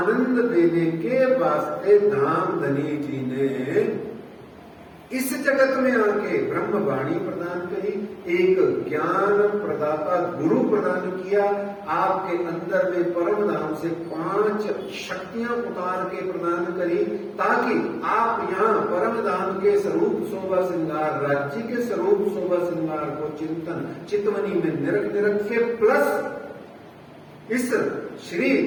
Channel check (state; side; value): identical; both; correlation 1.00